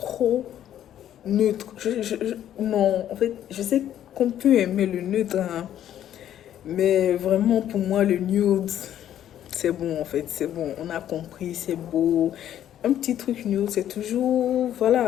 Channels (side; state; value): right; quieter; 11.1 dB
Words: neutre. Non, en fait, je sais qu'on peut aimer le neutre, hein, mais vraiment pour moi, le nude, c'est bon en fait, c'est bon. On a compris, c'est beau. Un petit truc nude, c'est toujours,